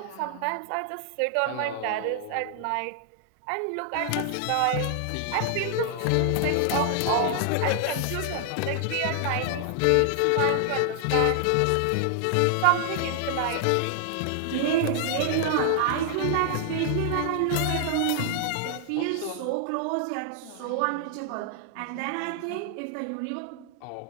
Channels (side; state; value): both; different; correlation 0.00